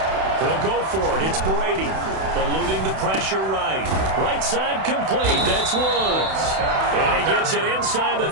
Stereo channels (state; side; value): late; left; 31 ms